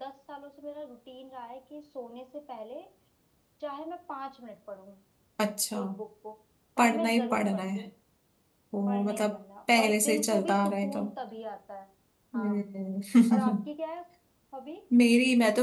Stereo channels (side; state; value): both; identical; correlation 1.00